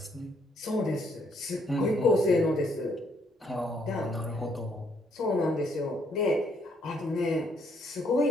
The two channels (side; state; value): both; normal; correlation 0.70